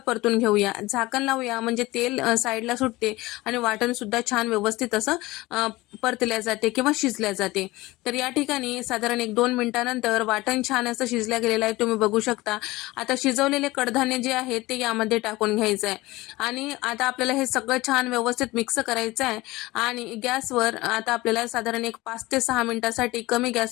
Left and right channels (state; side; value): quieter; right; 19.9 dB